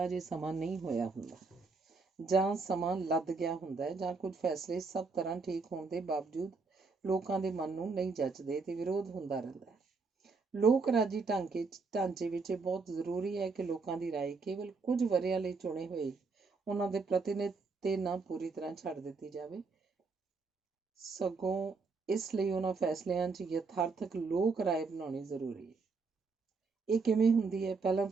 ਅਜੇ ਸਮਾਂ ਨਹੀਂ ਹੋਇਆ ਹੁੰਦਾ, ਜਾਂ ਸਮਾਂ ਲੱਦ ਗਿਆ ਹੁੰਦਾ ਹੈ, ਜਾਂ ਕੁਝ ਫੈਸਲੇ ਸਭ ਤਰ੍ਹਾਂ ਠੀਕ ਹੋਣ ਦੇ ਬਾਵਜੂਦ ਲੋਕਾਂ ਦੇ ਮਨ ਨੂੰ ਨਹੀਂ ਜੱਚਦੇ ਤੇ ਵਿਰੋਧ ਹੁੰਦਾ ਰਹਿੰਦਾ ਹੈ। ਲੋਕ ਰਾਜੀ ਢਾਂਚੇ ਵਿੱਚ ਇਹ ਬਹੁਤ ਜ਼ਰੂਰੀ ਹੈ ਕਿ ਲੋਕਾਂ ਦੀ ਰਾਏ ਕੇਵਲ ਕੁਝ ਵਰ੍ਹਿਆਂ ਲਈ ਚੁਣੇ ਹੋਏ ਉਹਨਾਂ ਦੇ ਪ੍ਰਤੀਨਿਧ ਤੇ ਨਾ ਪੂਰੀ ਤਰ੍ਹਾਂ ਛੱਡ ਦਿੱਤੀ ਜਾਵੇ, ਸਗੋਂ ਇਸ ਲਈ ਉਹਨਾਂ ਫੈਸਲਿਆਂ 'ਚ ਯਥਾਰਥਕ ਲੋਕ ਰਾਏ ਬਣਾਉਣੀ ਜ਼ਰੂਰੀ ਹੈ। ਇਹ ਕਿਵੇਂ ਹੁੰਦੀ ਹੈ? ਪਹਿਲਾਂ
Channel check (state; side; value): quieter; left; 4.4 dB